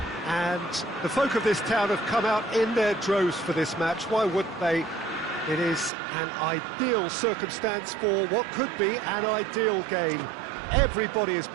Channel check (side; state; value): left; drops out; at 5.9 s